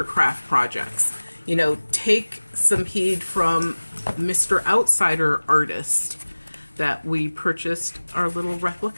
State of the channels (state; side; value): inverted; both; correlation -1.00